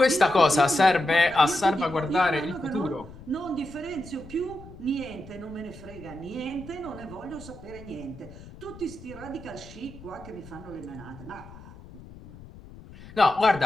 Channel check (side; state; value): left; noise; rumble, 18 dB below the sound